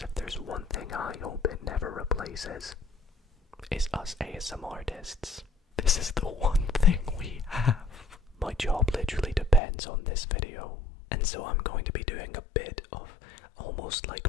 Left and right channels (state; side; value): drops out; right; at 9.6 s